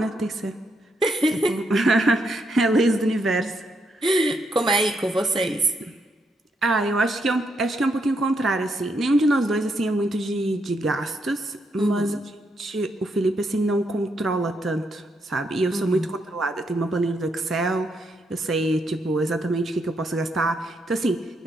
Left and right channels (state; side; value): normal; both; correlation 0.78